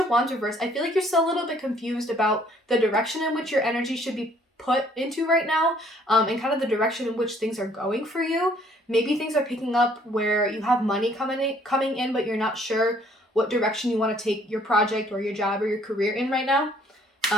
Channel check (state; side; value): normal; both; correlation 0.62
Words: Wands reverse, I feel like you're still a little bit confused about the direction in which your energy should be put into right now, and kind of the direction in which things are going for you. Maybe things are picking up where you have money coming in, but you're not sure what direction you want to take your project or your job or your career in right now.